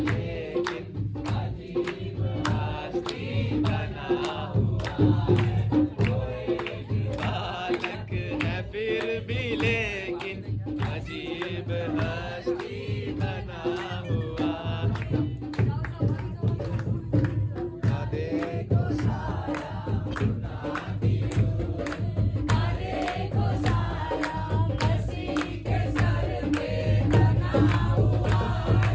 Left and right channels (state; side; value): identical; both; correlation 1.00